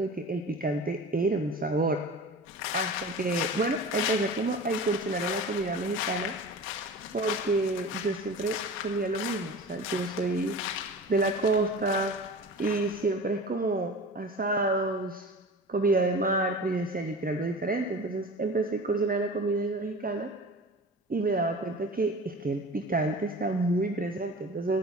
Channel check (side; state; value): both; normal; correlation 0.36